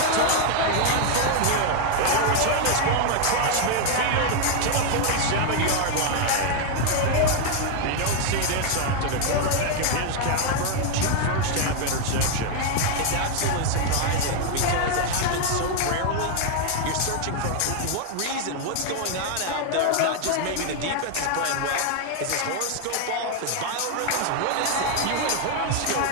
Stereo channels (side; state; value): both; different; correlation 0.01